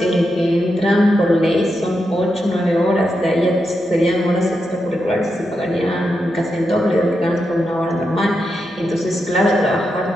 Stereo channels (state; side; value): noise; right; hum, 29 dB below the sound